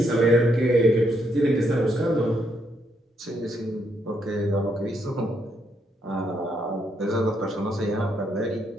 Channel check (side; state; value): both; normal; correlation 0.76